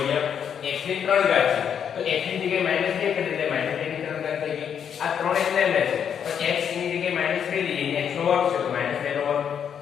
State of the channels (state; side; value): quieter; right; 8.1 dB